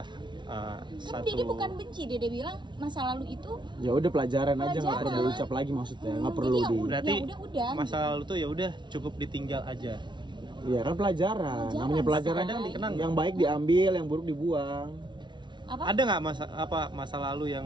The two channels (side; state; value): left; late; 0.23 ms